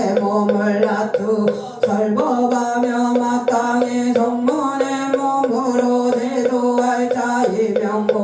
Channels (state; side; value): identical; both; correlation 1.00